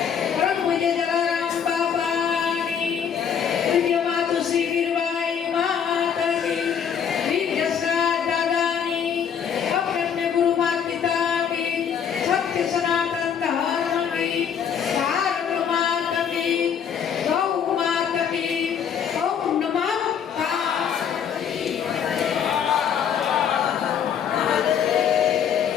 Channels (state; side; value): quieter; right; 7.9 dB